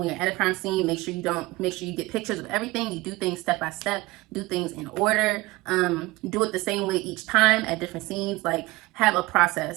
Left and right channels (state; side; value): quieter; left; 20.7 dB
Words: you're at a crime scene, make sure you get pictures of everything. You do things step by step, do things in order, do it the same way each time at different scenes. Like, have a